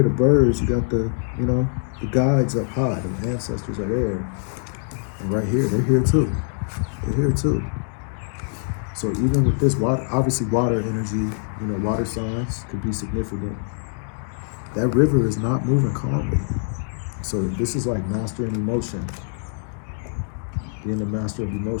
the birds. You got the, the guides up high. The ancestors are there. And right here, they're here too. They're here too. So even with this water, obviously water energy, water signs could be significant. That river is not moving calmly. So this is like mastering emotion, being the master of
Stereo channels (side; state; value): right; silent; digital silence